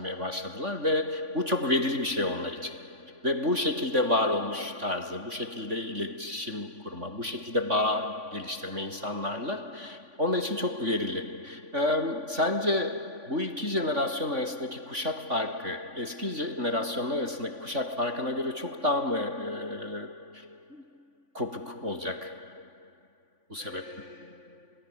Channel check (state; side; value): late; left; 3.5 ms